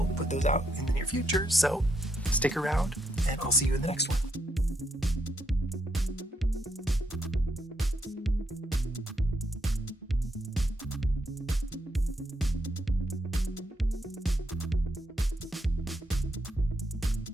put those out in the near future. So stick around and I'll see you in the next one.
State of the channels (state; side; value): normal; both; correlation 0.78